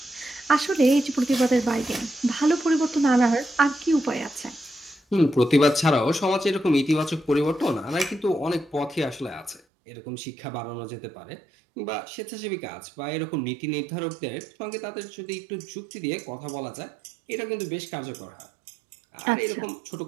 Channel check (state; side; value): drops out; left; at 9.6 s